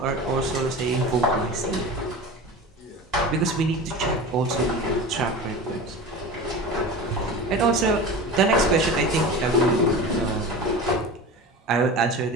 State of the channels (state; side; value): normal; both; correlation 0.31